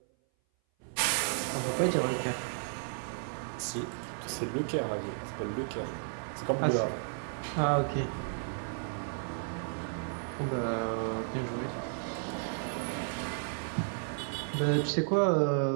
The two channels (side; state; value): left; silent; 55 dB below the other